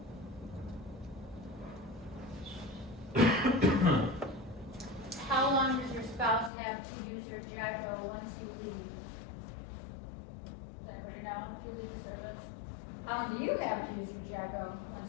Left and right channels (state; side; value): drops out; right; at 6.5 s